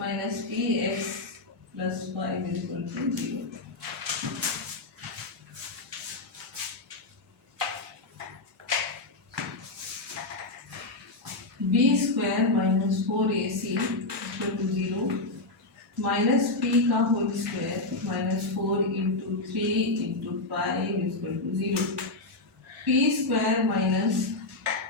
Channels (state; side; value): quieter; right; 3.0 dB